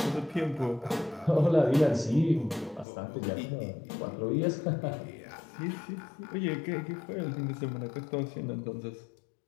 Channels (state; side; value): drops out; right; at 2.9 s